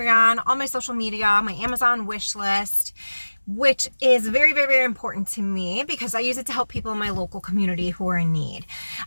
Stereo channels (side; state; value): both; inverted; correlation -1.00